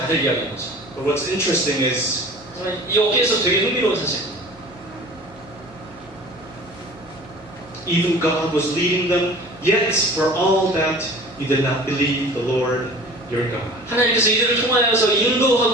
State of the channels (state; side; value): noise; right; hum, 25 dB below the sound